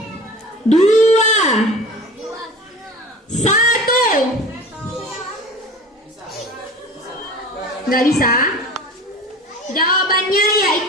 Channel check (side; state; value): both; normal; correlation 0.38